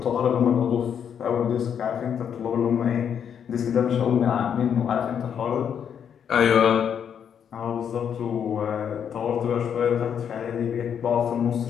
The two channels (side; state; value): right; quieter; 8.1 dB